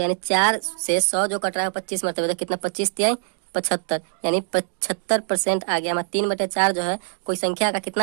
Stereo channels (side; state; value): left; silent; digital silence